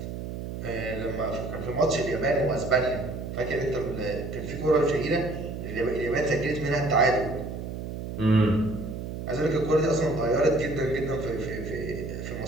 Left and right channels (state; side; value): noise; right; hum, 7 dB below the sound